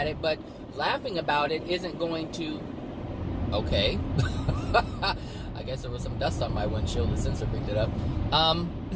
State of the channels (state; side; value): identical; both; correlation 1.00